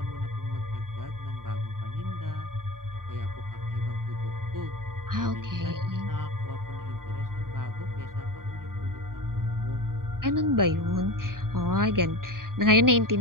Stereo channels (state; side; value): late; left; 0.91 ms